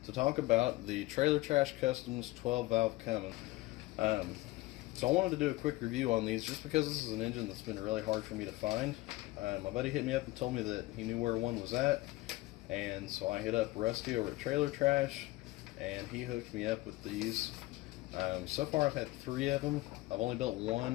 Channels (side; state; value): right; quieter; 19.6 dB